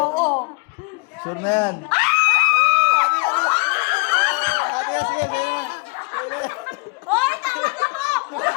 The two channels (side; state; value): right; quieter; 30.5 dB